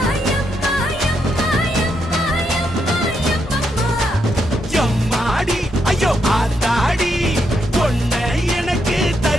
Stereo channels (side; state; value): both; normal; correlation 0.80